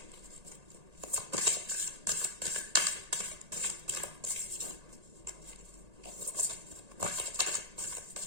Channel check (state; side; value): late; left; 1.8 ms